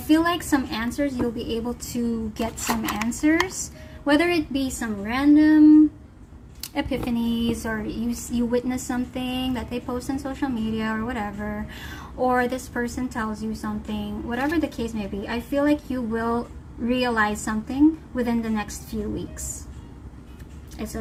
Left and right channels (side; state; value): both; identical; correlation 1.00